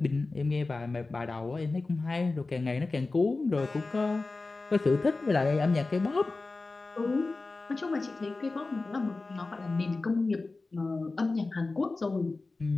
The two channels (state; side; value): quieter; right; 3.5 dB